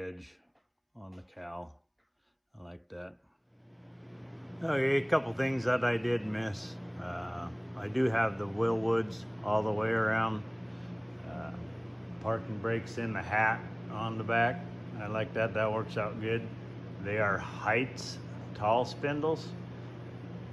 on the cowl. I like that. Okay, a couple things that I did miss. I do have the Willwoods all the way around. Parking brakes in the hat on the back. I like that, that works out good. They are Heights tall spindles.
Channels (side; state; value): both; identical; correlation 1.00